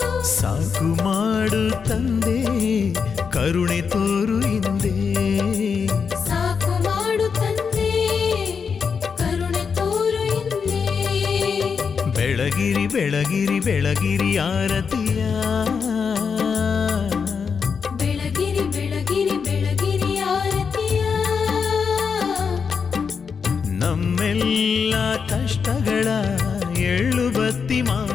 ಸಾಕು ಮಾಡು ತಂದೆ ಕರುಣೆ ತೋರು ಹಿಂದೆ ಸಾಕು ಮಾಡು ತಂದೆ ಕರುಣೆ ತೋರು ಹಿಂದೆ ಬೆಳಗಿರಿ ಬೆಳಗಿರಿ ಬೆಳಗಿರಿ ಆರತಿಯ ಬೆಳಗಿರಿ ಬೆಳಗಿರಿ ಬೆಳಗಿರಿ ಆರತಿಯ ನಮ್ಮೆಲ್ಲ ಕಷ್ಟಗಳ ಎಳ್ಳು ಬತ್ತಿ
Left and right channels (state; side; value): quieter; right; 6.0 dB